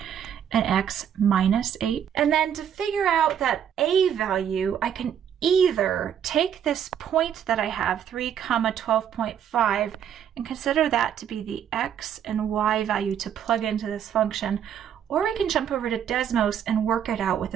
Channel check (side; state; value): left; quieter; 9.0 dB